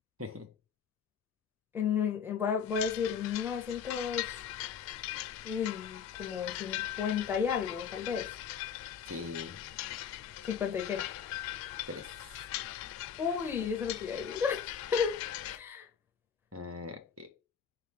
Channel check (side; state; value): right; quieter; 7.3 dB